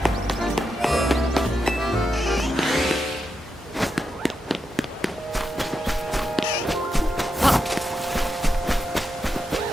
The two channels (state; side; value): normal; both; correlation 0.86